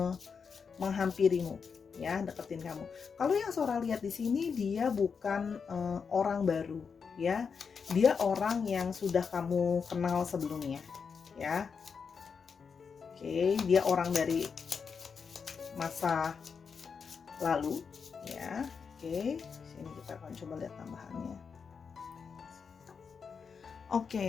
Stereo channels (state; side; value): quieter; right; 5.9 dB